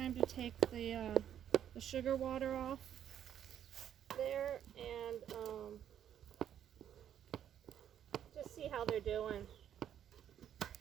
to take the sugar water off there and just see how they're doing.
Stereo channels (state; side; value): quieter; left; 9.9 dB